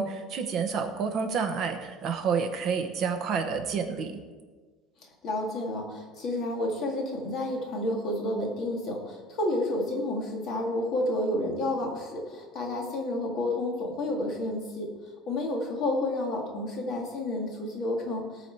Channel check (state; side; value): normal; both; correlation 0.47